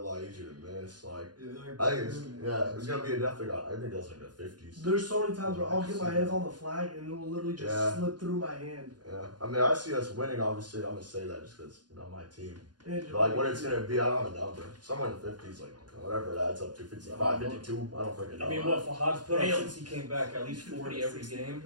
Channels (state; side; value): late; left; 0.70 ms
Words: lot easier to miss. Like I think it's gonna be a definitely. I think that's like the 50s. There's so many times where I'll get my hands on the flag and it will literally just Yeah. slip through my hand. Yeah, I mean, I see us winning. Obviously, I'm gonna say that just because my team. And But like what it's gonna be, I don't have a number. Somewhere in the 50s, like whatever it adds up to, 55, 52. I don't freaking know. I mean, what Fahad's put up since he came back, at least 40 every game.